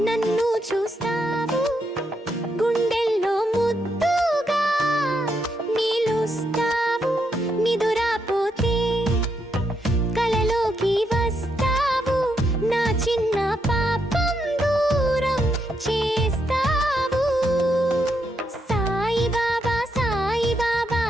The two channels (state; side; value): normal; both; correlation 0.79